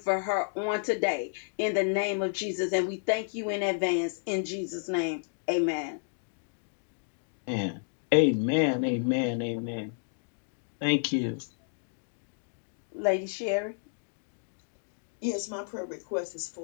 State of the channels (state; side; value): silent; right; digital silence